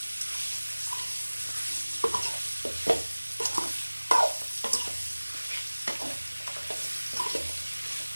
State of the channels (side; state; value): both; inverted; correlation -1.00